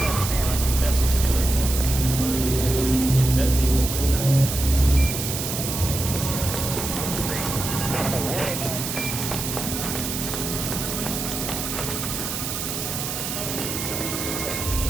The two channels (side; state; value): right; noise; hiss, 4 dB below the sound